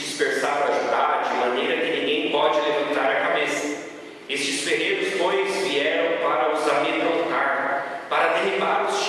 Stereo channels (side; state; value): both; identical; correlation 1.00